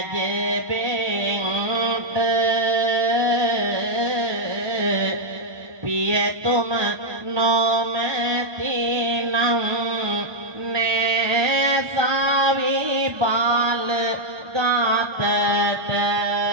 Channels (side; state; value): left; late; 1.2 ms